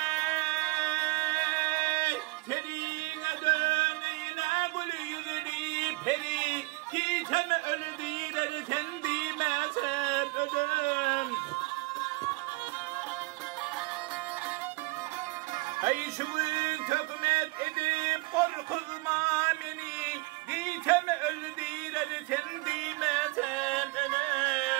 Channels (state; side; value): quieter; left; 25.1 dB